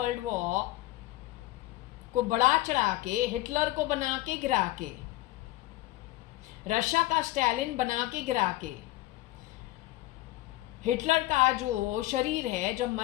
वॉर को बढ़ा चढ़ा के, हिटलर को बना के गिरा के, रशिया का स्टालिन बना के गिरा के, हिटलर का जो शरीर है जब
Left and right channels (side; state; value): right; quieter; 17.7 dB